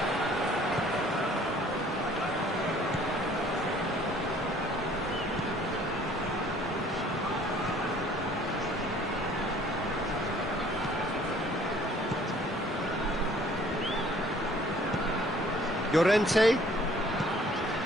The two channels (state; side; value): normal; both; correlation 0.56